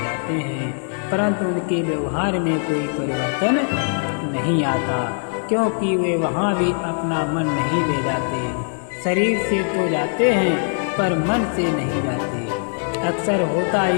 हैं, परंतु उनके व्यवहार में कोई परिवर्तन नहीं आता, क्योंकि वे वहाँ भी अपना मन नहीं ले जाते। शरीर से तो जाते हैं पर मन से नहीं जाते। अक्सर होता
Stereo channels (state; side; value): silent; right; 57 dB below the other